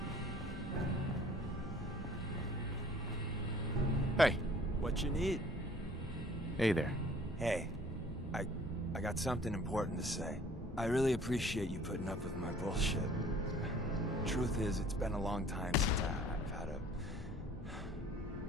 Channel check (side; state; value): both; normal; correlation 0.53